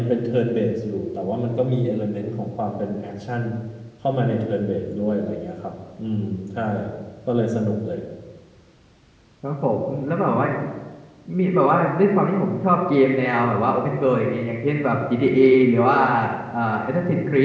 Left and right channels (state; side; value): identical; both; correlation 1.00